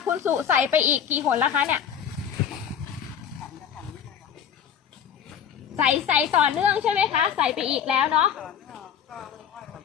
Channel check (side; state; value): right; quieter; 8.4 dB